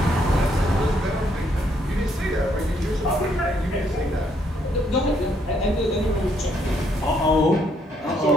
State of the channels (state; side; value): normal; both; correlation 0.71